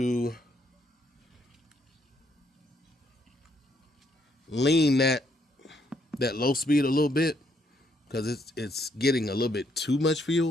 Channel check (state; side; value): normal; both; correlation 0.72